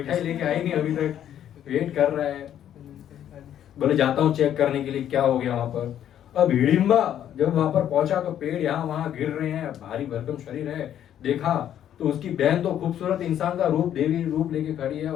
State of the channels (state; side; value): quieter; right; 10.5 dB